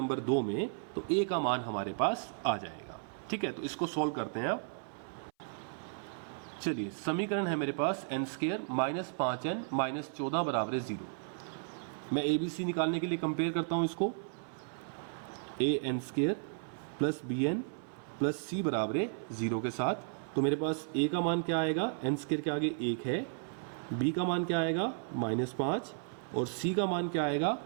2 में, तो a का मान हमारे पास आ जाएगा, ठीक है। तो इसको सोल्व करते हैं अब। चलिए समीकरण है मेरे पास n square minus 5n minus 14 बराबर है 0। मैं ए बी सी निकालने के लिए कंपेयर करता हूं इसको, A N square plus B N plus C बराबर है 0 के साथ। तो मेरे पास ए का मान क्या आएगा, एन स्क्वायर के आगे 1 है, बी का मान क्या आएगा माइनस 5 और सी का मान क्या आएगा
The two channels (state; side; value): silent; left; 55 dB below the other